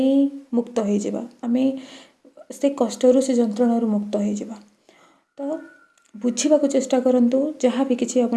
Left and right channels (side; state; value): both; identical; correlation 1.00